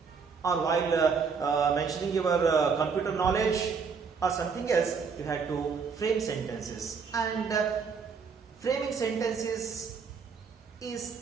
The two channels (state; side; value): quieter; left; 5.6 dB